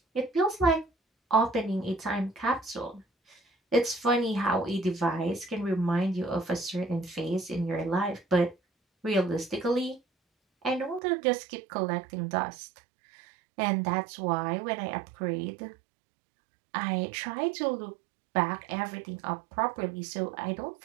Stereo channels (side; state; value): left; drops out; at 11.0 s